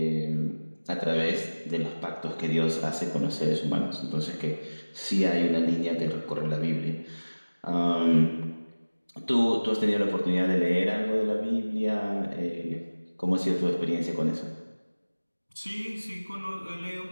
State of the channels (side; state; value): both; inverted; correlation -1.00